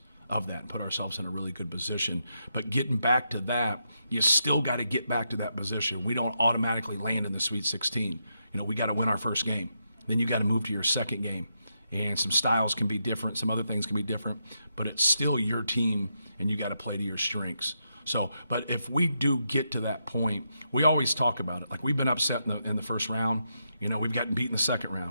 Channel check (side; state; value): both; inverted; correlation -0.82